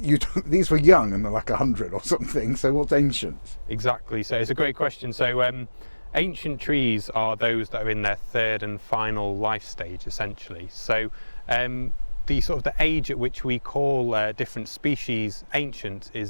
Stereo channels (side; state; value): both; inverted; correlation -1.00